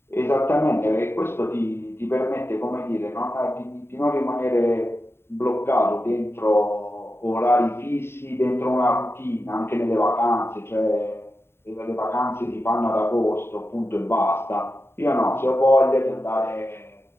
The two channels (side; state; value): right; late; 0.12 ms